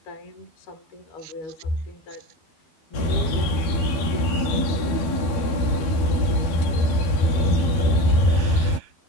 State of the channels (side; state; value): right; late; 12 ms